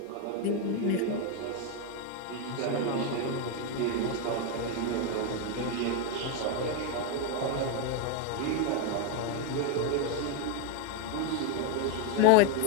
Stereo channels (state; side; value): different; both; correlation 0.01